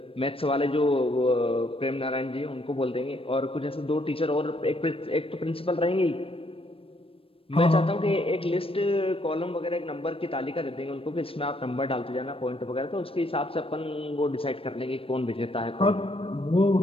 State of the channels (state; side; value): late; right; 0.27 ms